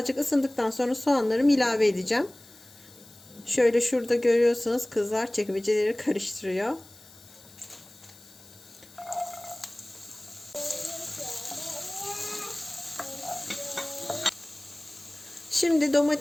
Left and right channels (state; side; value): noise; left; hiss, 23 dB below the sound